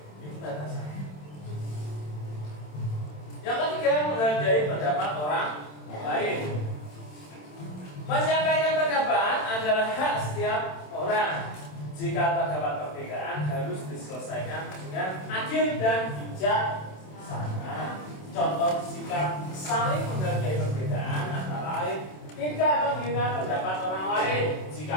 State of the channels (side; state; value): right; late; 27 ms